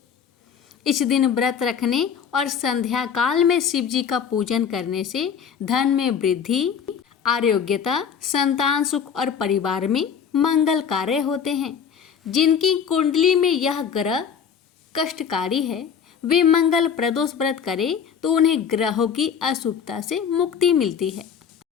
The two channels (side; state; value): right; quieter; 7.3 dB